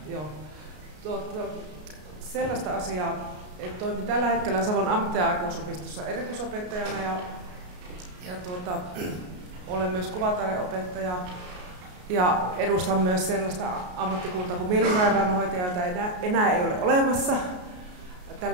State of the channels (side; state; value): left; late; 33 ms